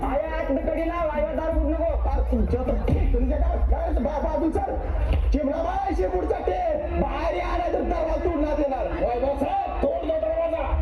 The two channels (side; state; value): both; identical; correlation 1.00